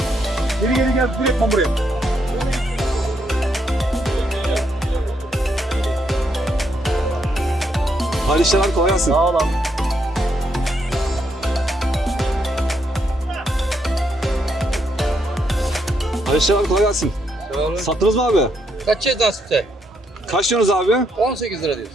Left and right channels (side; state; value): both; normal; correlation 0.76